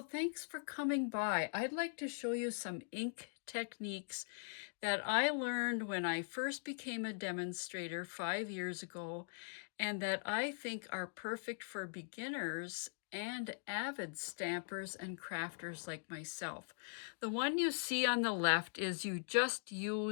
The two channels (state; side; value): silent; right; digital silence